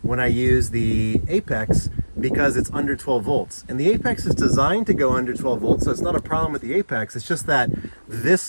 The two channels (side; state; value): both; inverted; correlation -1.00